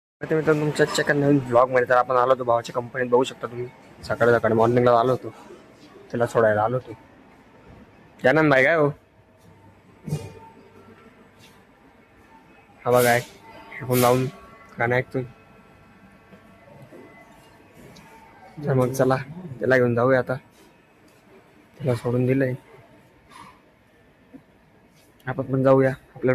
मित्रांनो तुमच्या आजच्या नवीन ब्लॉगमध्ये तर आपण आलो होतो भावाच्या कंपनीत. बघू शकता तुम्ही, सकाळी सकाळी मॉर्निंगला आलो होतो, त्याला सोडायला आलो होतो. त्यानंद भाई काय हो, हा बघा हेडफोन लावून गाणं ऐकतोय. तर मग चला त्याला घेऊन जाऊया आता, त्याला सोडून दिलंय. आपण पण जाऊया,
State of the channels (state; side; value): identical; both; correlation 1.00